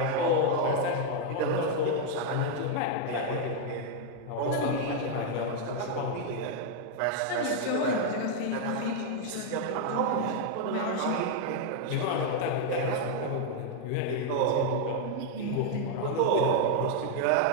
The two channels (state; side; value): different; both; correlation 0.00